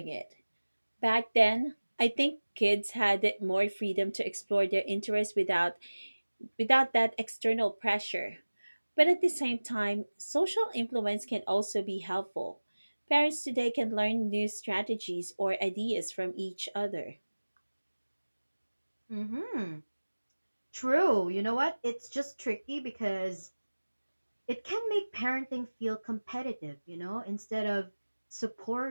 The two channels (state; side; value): inverted; both; correlation -1.00